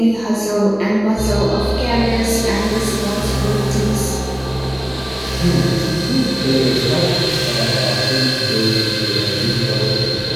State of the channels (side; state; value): right; noise; hum, 22 dB below the sound